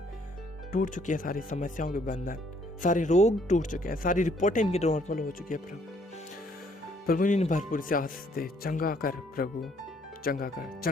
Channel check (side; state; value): both; normal; correlation 0.65